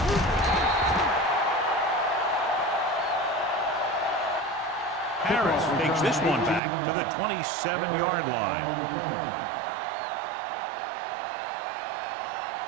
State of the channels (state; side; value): drops out; left; at 6.6 s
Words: Harris takes this one back to the 27-yard line.